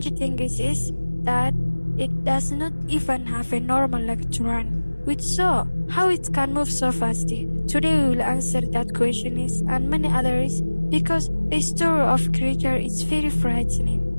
that it does not even have a normal leg to run. Which so, how it can move so fast? Today we will answer that question and many others because the story of creature is very frightening.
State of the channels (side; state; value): both; inverted; correlation -1.00